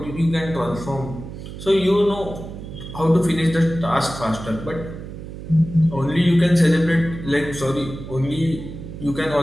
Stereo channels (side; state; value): right; noise; hum, 11 dB below the sound